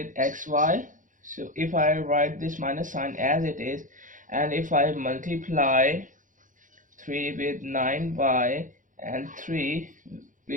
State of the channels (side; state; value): left; late; 0.38 ms